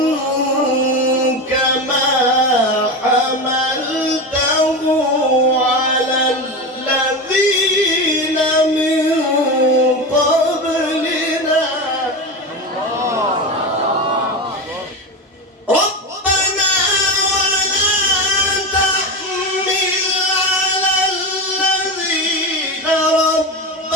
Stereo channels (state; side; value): normal; both; correlation 0.21